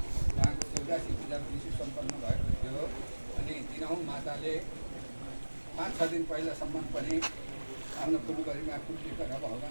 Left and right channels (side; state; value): both; inverted; correlation -1.00